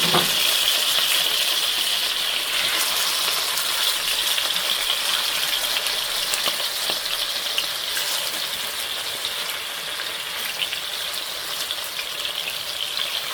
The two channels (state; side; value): identical; both; correlation 1.00